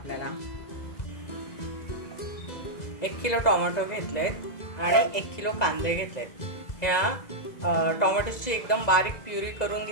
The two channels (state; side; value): late; right; 2.0 ms